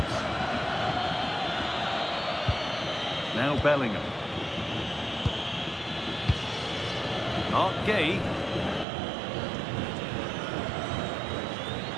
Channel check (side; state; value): left; drops out; at 8.8 s